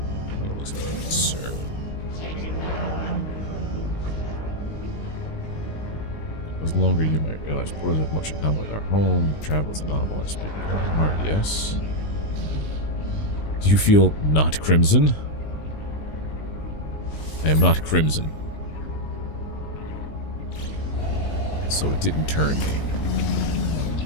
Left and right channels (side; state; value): right; late; 19 ms